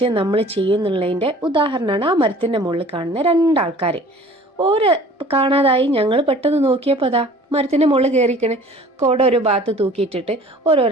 നമ്മൾ ചെയ്യുന്നുള്ളതിൻ്റെ ഉദാഹരണമാണ് ആ മരത്തിൻ്റെ മുകളിൽ കാണുന്ന രണ്ടാൾക്കാർ. ഓരോ കാണാതായി ഞങ്ങൾ പെട്ടെന്ന് നോക്കിയപ്പോൾ അതാ മരത്തിൻ്റെ മുകളിൽ കയറിക്കണേ, കോട ഒരു ഭാഗത്ത് തൂക്കിയിട്ടിട്ട്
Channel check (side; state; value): both; normal; correlation 0.48